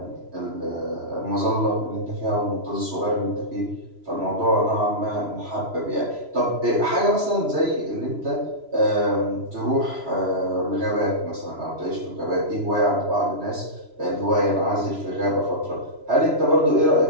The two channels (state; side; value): late; left; 3.0 ms